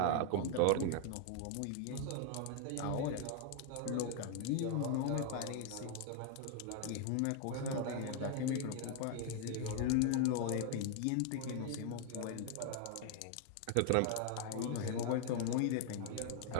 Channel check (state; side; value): different; both; correlation 0.00